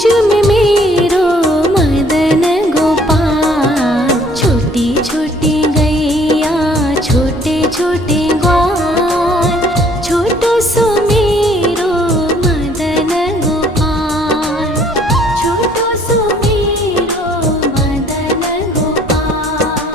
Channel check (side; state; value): both; normal; correlation 0.59